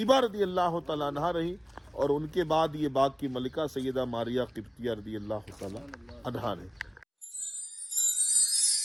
رضی اللہ تعالی عنہا رہی، اور ان کے بعد یہ باغ کی ملکہ سیدہ ماریہ قبطیہ رضی اللہ تعالی عنہا رہی۔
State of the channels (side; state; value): both; identical; correlation 1.00